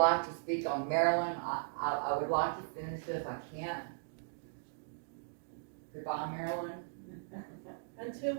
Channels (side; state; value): left; silent; digital silence